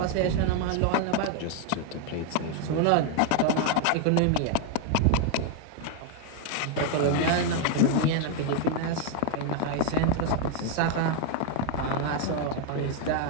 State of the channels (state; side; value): different; both; correlation 0.01